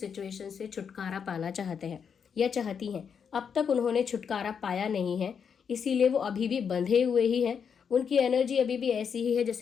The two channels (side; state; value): right; quieter; 7.0 dB